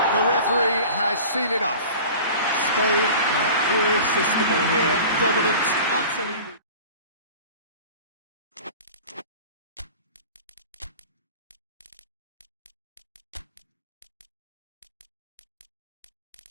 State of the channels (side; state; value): both; inverted; correlation -0.39